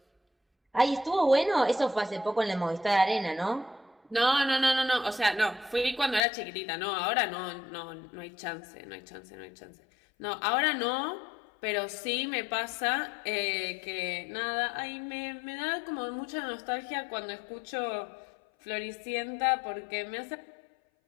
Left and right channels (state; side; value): drops out; right; at 6.2 s